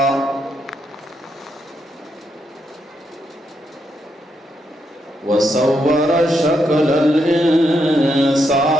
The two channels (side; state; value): both; normal; correlation 0.80